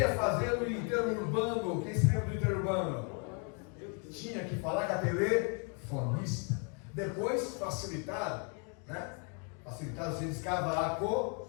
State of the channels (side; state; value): right; quieter; 38.7 dB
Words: fazer o interurbano. Quem se lembra do interurbano? Tinha que falar com a telefonista. Depois facilitaram, né? Facilitaram, você descava a